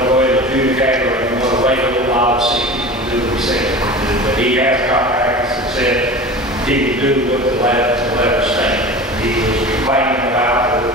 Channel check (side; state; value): both; normal; correlation 0.34